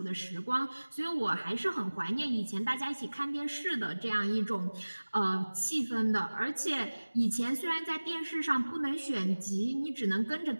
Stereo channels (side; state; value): both; inverted; correlation -1.00